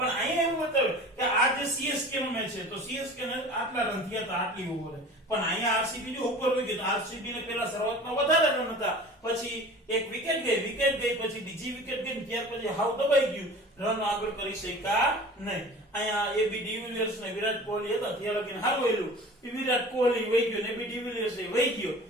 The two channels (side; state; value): both; normal; correlation 0.40